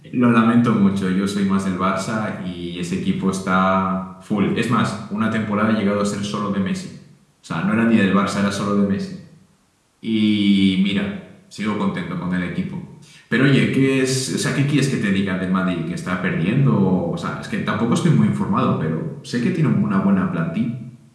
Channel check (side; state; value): both; identical; correlation 1.00